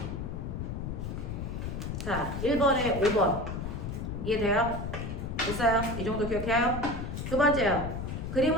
자, 1번에 5번. 이해돼요? 됐어요? 이 정도 기억해요? 두 번째요.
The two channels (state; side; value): noise; left; rumble, 5 dB below the sound